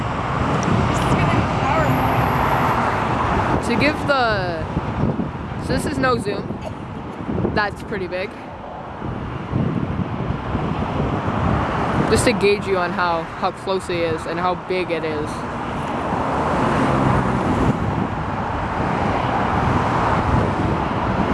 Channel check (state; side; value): identical; both; correlation 1.00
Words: To give the... So this is no zoom. That's pretty big. Just to gauge you on how close it is and how big it is.